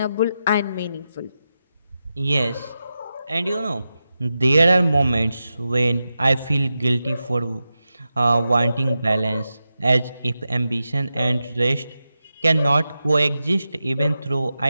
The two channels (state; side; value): inverted; both; correlation -0.90